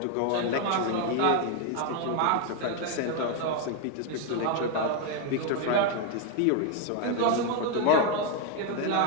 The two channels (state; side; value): different; both; correlation 0.01